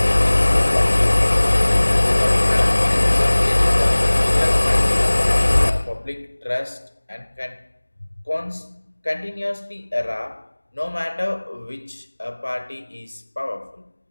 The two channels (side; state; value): both; inverted; correlation -1.00